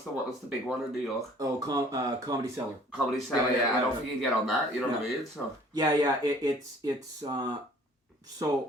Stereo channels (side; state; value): both; normal; correlation 0.53